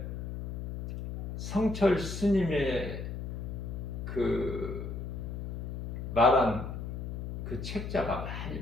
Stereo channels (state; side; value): noise; left; hum, 6 dB below the sound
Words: 성철 스님의 그 말한 그 책자가 많이